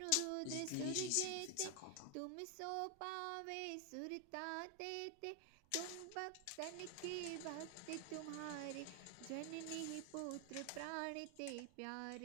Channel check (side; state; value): both; different; correlation 0.00